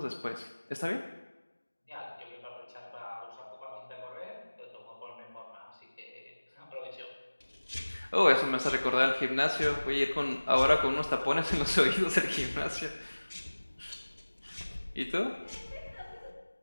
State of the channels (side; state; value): both; inverted; correlation -1.00